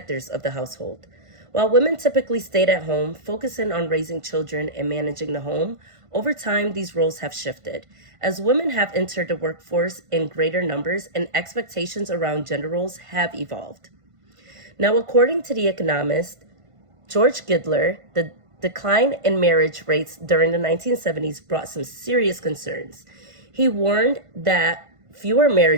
of the household, while women typically stayed at home, focusing on raising children and managing the home. Over time, these roles have shifted, as women have entered the workforce in greater numbers and expectations around gender roles have evolved. Now, according to the economist George Gidler, the decline in marriage rates during the 1970s brought some serious concerns. He warned that fewer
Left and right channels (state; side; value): late; left; 1.5 ms